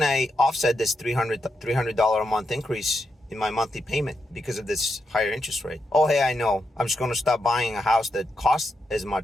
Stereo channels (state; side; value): normal; both; correlation 0.84